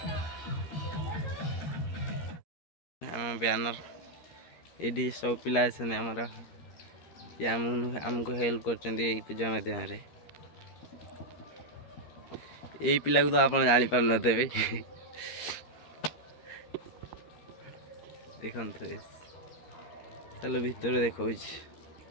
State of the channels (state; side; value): late; right; 13 ms